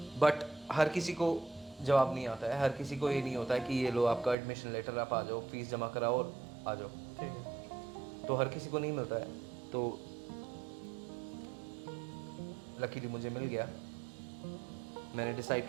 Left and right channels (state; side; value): drops out; left; at 4.4 s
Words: बट हर किसी को जवाब नहीं आता है। हर किसी को ये नहीं होता है कि ये लो आपका एडमिशन लेटर, आप आ जाओ, फीस जमा कराओ और आ जाओ। ठीक है, तो हर किसी को नहीं मिलता है। तो लकीली मुझे मिल गया। मैंने